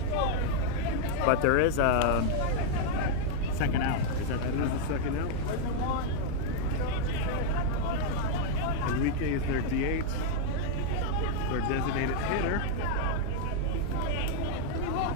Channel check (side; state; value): both; different; correlation -0.01